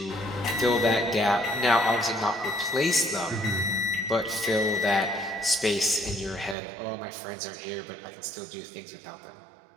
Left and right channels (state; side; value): drops out; left; at 6.6 s